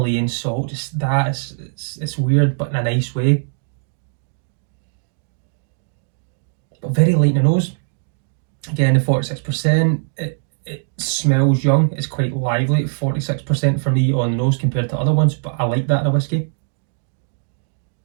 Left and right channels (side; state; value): left; silent; digital silence